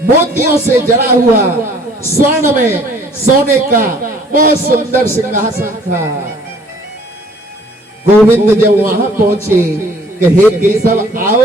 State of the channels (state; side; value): normal; both; correlation 0.56